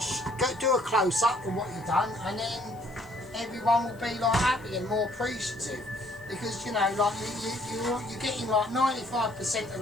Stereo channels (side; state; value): left; noise; hiss, 27 dB below the sound